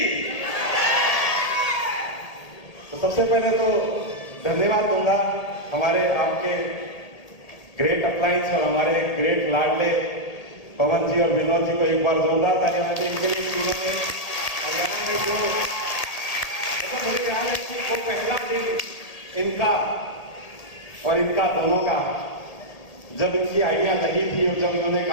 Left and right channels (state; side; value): late; right; 1.8 ms